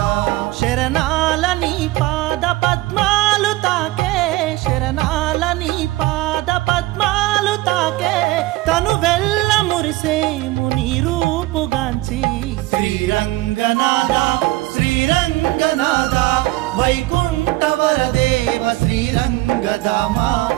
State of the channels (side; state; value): left; quieter; 18.8 dB